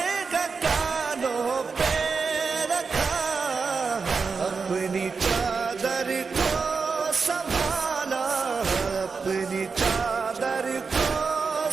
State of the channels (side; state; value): left; quieter; 5.0 dB